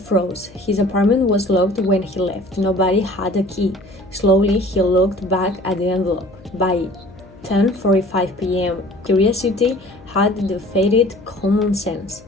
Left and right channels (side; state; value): left; noise; hum, 23 dB below the sound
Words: His apartment was locked when he left. Nobody had a key. Slowly, he looked back at the envelope. By 10:45 p.m., curiosity had defeated common sense.